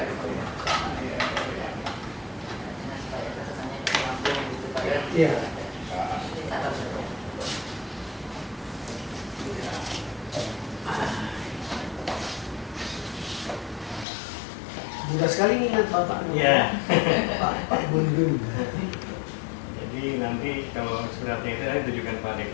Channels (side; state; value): right; drops out; at 14.1 s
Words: iya. Mudah sekali ingat Bapak. Iya. Pak Bundun. Jadi nanti kalau suratnya itu ditujukan pada